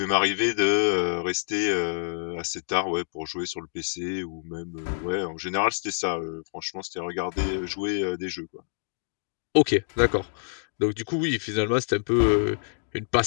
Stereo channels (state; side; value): silent; right; digital silence